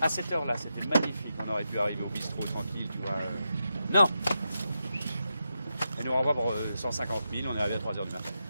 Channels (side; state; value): both; inverted; correlation -0.87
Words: À cette heure-là, c'était magnifique. On aurait pu arriver au bistrot tranquille, tu vois. Non! Elle nous renvoie pour 150 000, on est arrivé à 3 h du matin.